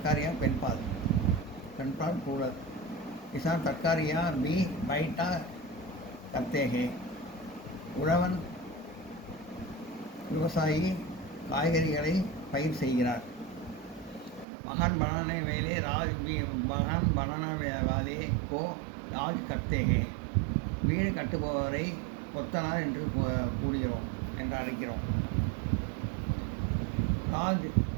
பெண்பால் பூரல். किसान तरकारियाँ भी बैठा करते हैं. உழவன் விவசாயி காய்கறிகளை பயிர் செய்கிறார். மகான் बनाने वाले को राज करते हैं. வீடு கட்டுபவரை கொத்தனார் என்று அழைக்கிறோம். राज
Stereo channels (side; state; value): left; drops out; at 14.5 s